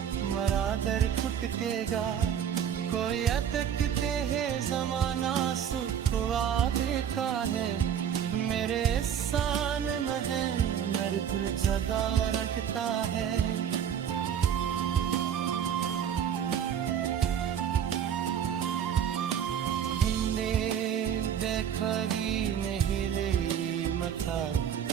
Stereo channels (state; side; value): quieter; left; 8.9 dB